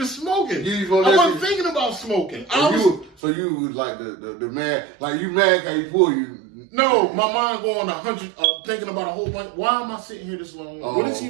smoking. I wasn't thinking about smoking. So you was like the man, like you mad how he pull you. No, my mind going 100, thinking about a whole bunch. Why am I sitting here this long? Oh, what is he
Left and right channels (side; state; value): left; drops out; at 3.2 s